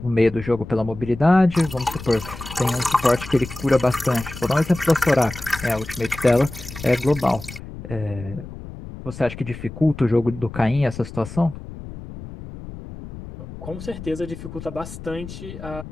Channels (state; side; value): noise; left; rumble, 12 dB below the sound